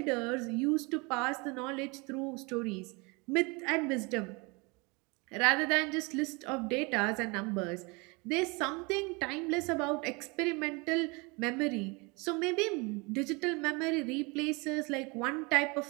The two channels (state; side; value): quieter; left; 28.4 dB